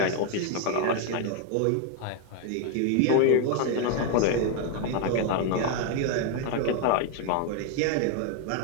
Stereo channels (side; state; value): both; different; correlation 0.01